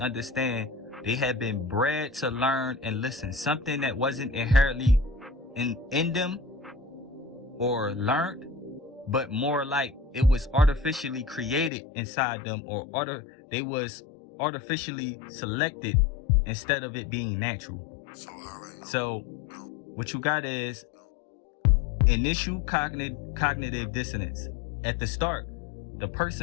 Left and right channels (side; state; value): right; drops out; at 11.7 s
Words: they have been bred to learn and listen. Something that wasn't inherently in them or learned, but more like it was artificially created inside them, or they was artificially selected instead of it being natural. So what you got is initial cognitive dissonance. At the start, the